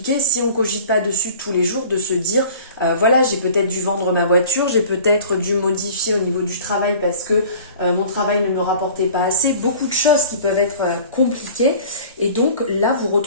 si on cogite pas dessus tous les jours, de se dire voilà, j'ai peut-être dû vendre ma voiture, j'ai peut-être dû modifier au niveau du travail parce que mon travail ne me rapportait pas assez, beaucoup de choses qui peuvent être compliquées, et donc là vous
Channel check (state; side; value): inverted; both; correlation -0.45